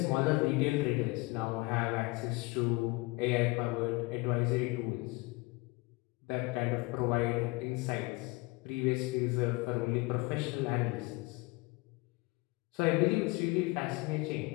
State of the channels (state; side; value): quieter; right; 24.3 dB